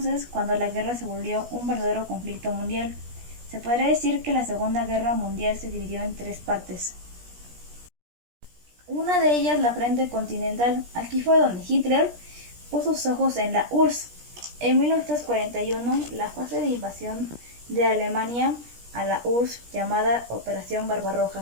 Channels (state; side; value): late; left; 17 ms